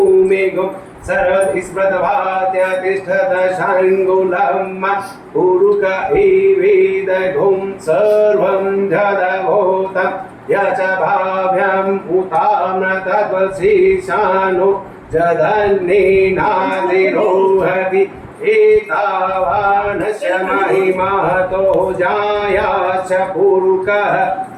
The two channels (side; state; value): both; identical; correlation 1.00